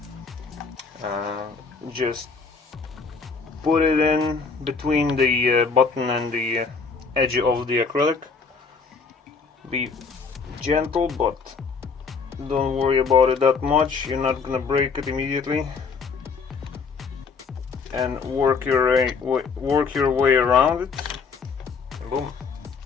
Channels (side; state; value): right; quieter; 5.0 dB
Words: Just put it in between the button and the edge of the acrylic. Be gentle, but don't worry about it that much. You're not gonna break it immediately. And work your way around it. And boom!